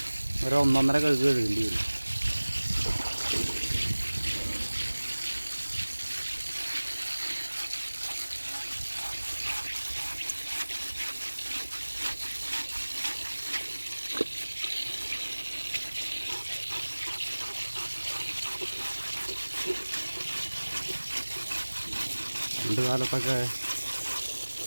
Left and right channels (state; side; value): inverted; both; correlation -1.00